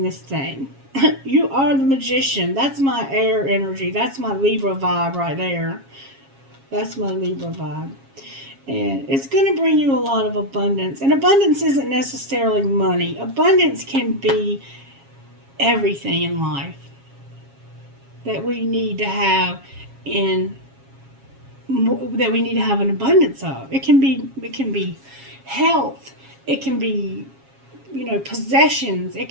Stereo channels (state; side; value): late; left; 7.3 ms